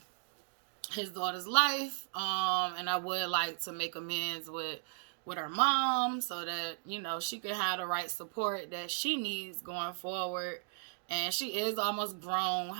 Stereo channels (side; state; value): left; silent; digital silence